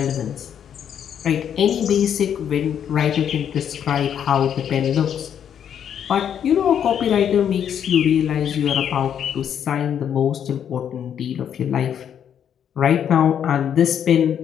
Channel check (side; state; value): right; quieter; 8.9 dB